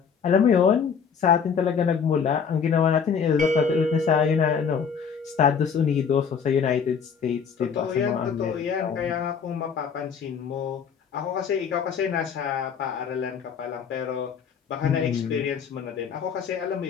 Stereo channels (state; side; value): quieter; right; 6.6 dB